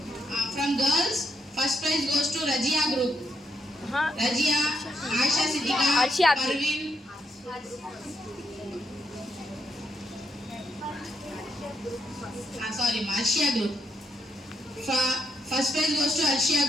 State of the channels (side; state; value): both; normal; correlation 0.78